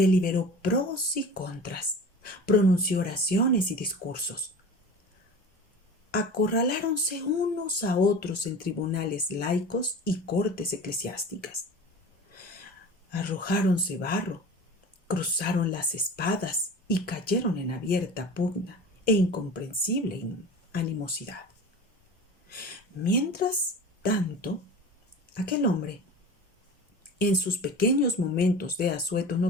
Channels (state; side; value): normal; both; correlation 0.36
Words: pros y contras, pronunció oraciones y discursos. Acorraláronse unos a otros en tribunales laicos y cortes eclesiásticas. Arrojáronse barro, cruzaron las espadas y cayeron en abierta pugna e incomprensible animosidad. Mientras tanto, aquel hombre, en sus pequeños momentos de asueto